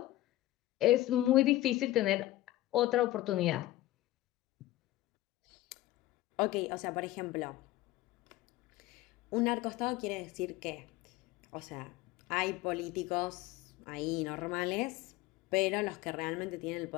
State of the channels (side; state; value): right; quieter; 16.2 dB